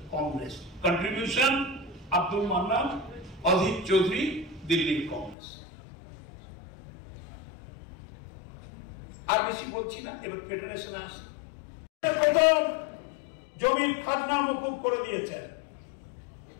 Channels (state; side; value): drops out; right; at 5.4 s